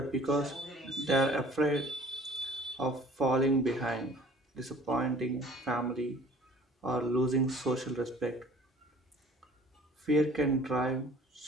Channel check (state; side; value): normal; both; correlation 0.50